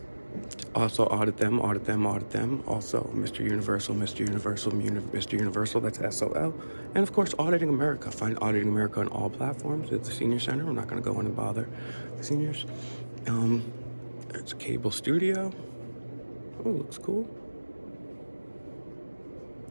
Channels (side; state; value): both; inverted; correlation -1.00